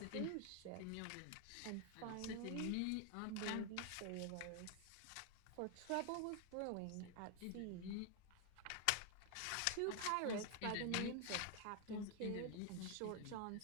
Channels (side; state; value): both; different; correlation 0.00